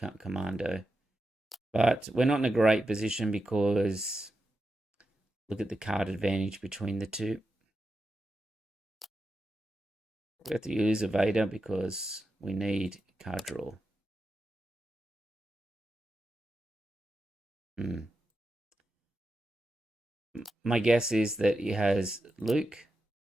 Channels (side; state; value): both; normal; correlation 0.89